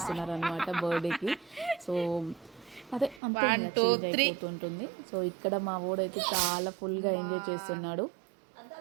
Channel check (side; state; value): left; drops out; at 3.2 s